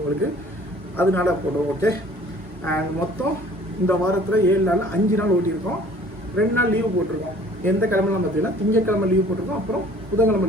அதனால போடுவோம். ஓகே, அண்ட் மொத்தம் இந்த வாரத்தில் 7 நாள் 5 நாள் ஓட்டியிருக்கோம். 2 நாள் லீவு போட்டிருக்கோம். எந்த கிழமைலாம் பார்த்தீங்கன்னா திங்கக்கிழமை லீவு போட்டிருக்கோம், அப்புறம் புதன்கிழமை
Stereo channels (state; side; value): normal; both; correlation 0.52